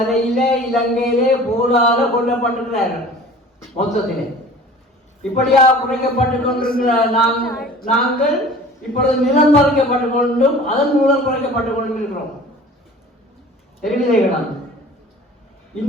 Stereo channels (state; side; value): normal; both; correlation 0.44